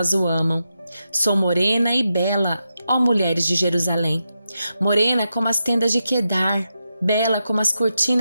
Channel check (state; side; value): inverted; both; correlation -0.87